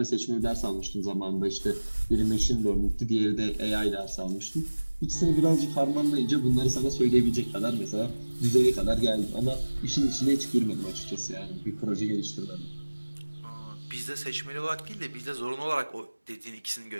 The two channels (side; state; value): both; inverted; correlation -1.00